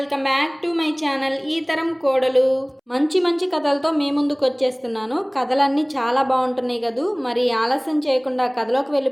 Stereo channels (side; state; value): both; identical; correlation 1.00